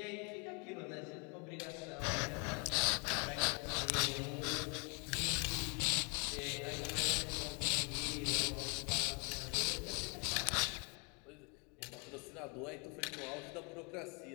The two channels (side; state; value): right; quieter; 35.8 dB